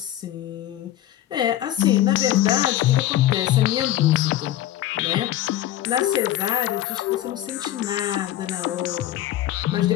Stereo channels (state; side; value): quieter; right; 13.1 dB